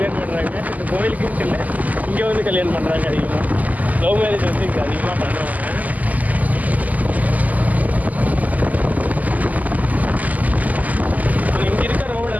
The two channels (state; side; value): late; left; 0.079 ms